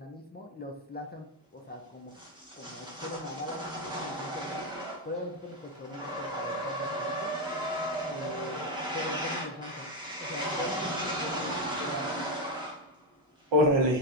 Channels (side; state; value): both; normal; correlation 0.07